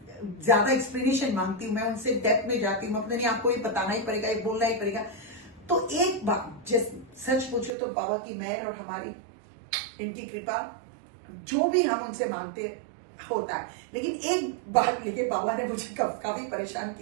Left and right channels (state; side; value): drops out; left; at 7.7 s